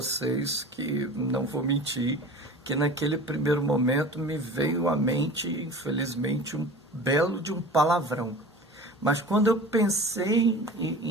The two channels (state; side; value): normal; both; correlation 0.38